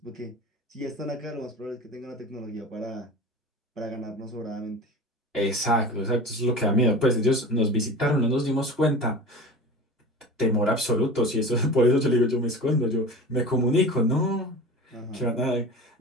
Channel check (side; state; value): both; normal; correlation 0.34